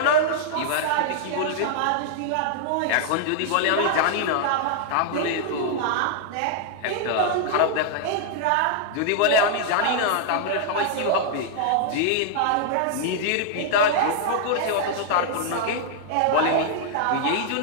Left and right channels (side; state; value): both; different; correlation -0.01